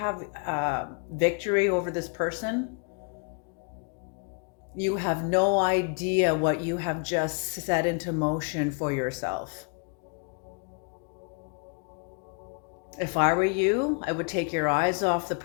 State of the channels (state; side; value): quieter; right; 36.9 dB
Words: victory over this person, you have no idea what you have just set into motion for yourself. If I were you, I would take your eyes off the